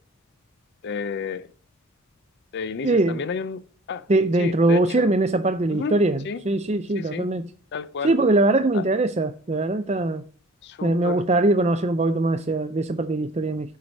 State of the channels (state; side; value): normal; both; correlation 0.48